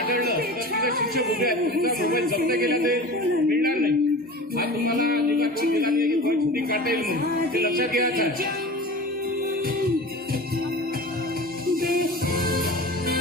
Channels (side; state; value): both; normal; correlation 0.35